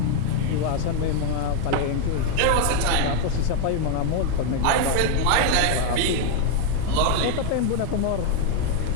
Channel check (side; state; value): both; different; correlation 0.00